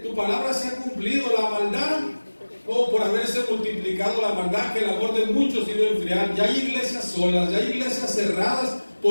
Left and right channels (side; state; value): both; inverted; correlation -1.00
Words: tu palabra se ha cumplido. La maldad, por haberse multiplicado la maldad, que el amor de muchos iba a enfriar. Ya hay iglesias solas, ya hay iglesias cerradas